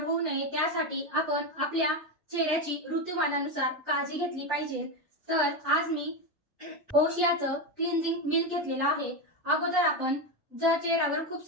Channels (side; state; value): both; normal; correlation 0.13